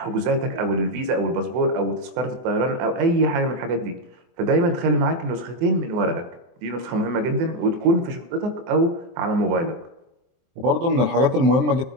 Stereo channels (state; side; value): late; left; 24 ms